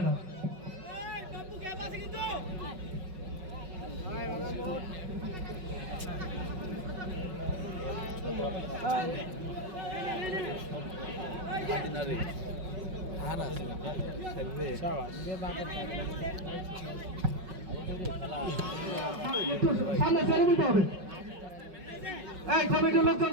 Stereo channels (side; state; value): left; late; 5.4 ms